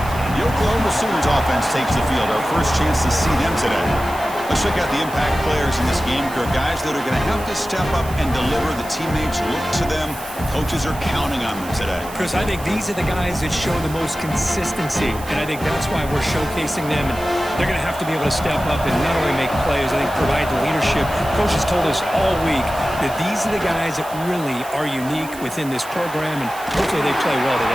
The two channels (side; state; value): right; noise; hiss, 16 dB below the sound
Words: The Oklahoma Sooners offense takes the field. Our first chance to see them today. Let's check out the impact players in this game, Kirk. Guys that are going to have to step up and deliver. The teammates look to them. Coaches are counting on them today. Chris, I think these are the guys that show the most consistency, and I think that's why we're showcasing them. And they're going to have to be able to step up and not only make plays, I think provide the leadership. Coaches told us all week that these are the guys that really are unique within this program, and hopefully they play well